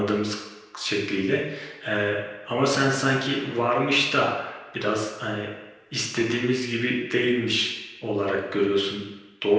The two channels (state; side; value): identical; both; correlation 1.00